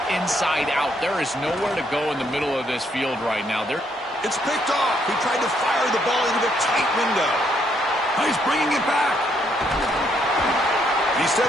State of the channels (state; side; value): normal; both; correlation 0.72